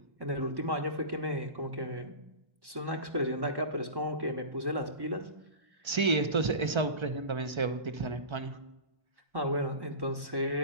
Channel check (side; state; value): left; late; 1.3 ms